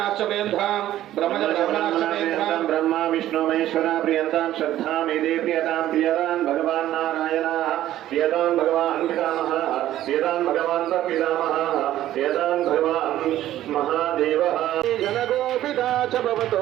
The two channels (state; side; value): quieter; left; 13.3 dB